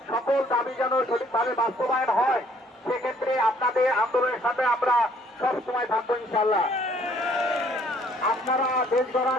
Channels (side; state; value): both; normal; correlation 0.62